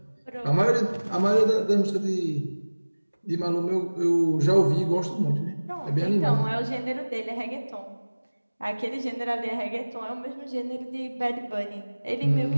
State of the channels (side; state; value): both; inverted; correlation -1.00